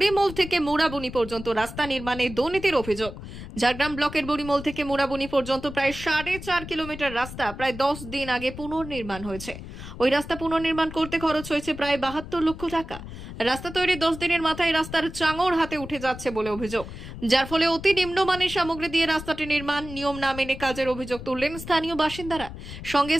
থেকে মুড়াবনি পর্যন্ত রাস্তা নির্মাণে দুর্নীতির অভিযোগ। ঝাড়গ্রাম ব্লকের বুড়িমোল থেকে মুড়াবনি পর্যন্ত প্রায় 4.5 কিলোমিটার রাস্তা প্রায় 10 দিন আগে পুনর্নির্মাণ হয়েছে। ওই রাস্তা পুনর্নির্মাণ করতে খরচ হয়েছে প্রায় 72 লক্ষ টাকা। রাস্তা তৈরি 10 দিনের মাথায় রাস্তার চাঙড় হাতে উঠে যাচ্ছে বলে অভিযোগ, যার ফলে অতি নিম্নমানের সামগ্রী দিয়ে রাস্তাটি নির্মাণ, নিয়ম না মেনে কাজের অভিযোগ তুললেন স্থানীয় বাসিন্দারা। সঙ্গে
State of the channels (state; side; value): noise; left; rumble, 12 dB below the sound